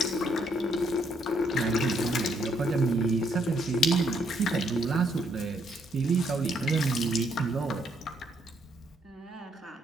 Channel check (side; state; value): both; normal; correlation 0.72